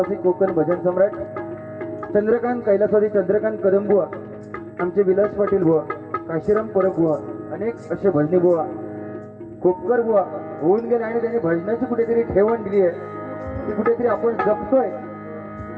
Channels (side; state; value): both; identical; correlation 1.00